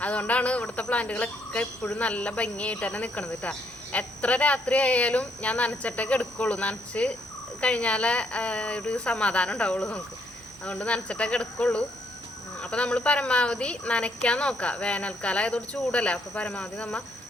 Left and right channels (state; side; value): normal; both; correlation 0.72